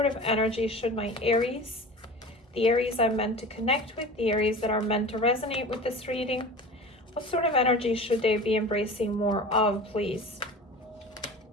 of energy should my Aries, the Aries I'm meant to connect with, the Aries that are meant to resonate with this reading, what sort of energy should they be embracing more of, please?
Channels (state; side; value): normal; both; correlation 0.36